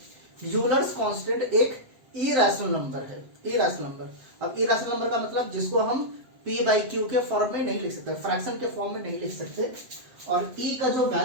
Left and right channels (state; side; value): late; left; 7.8 ms